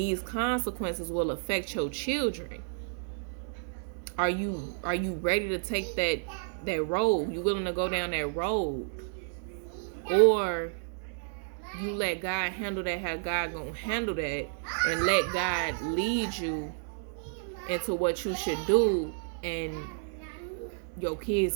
consequences will affect your children. Are you ready to take that road? You willing to go down that road? Or you let God handle that how God gonna handle that, and let God lead you into what you should do, and your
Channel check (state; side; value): silent; left; digital silence